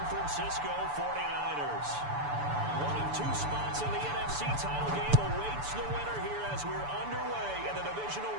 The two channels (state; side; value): late; left; 6.9 ms